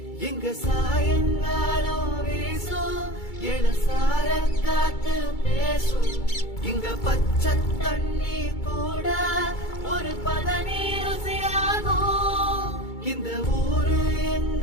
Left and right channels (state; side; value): late; right; 2.3 ms